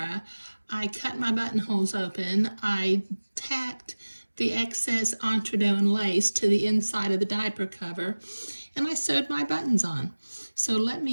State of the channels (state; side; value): inverted; both; correlation -1.00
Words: I cut my buttonholes open. I tacked the excess entredeux and lace to the inside of the diaper cover, and I sewed my buttons on. So let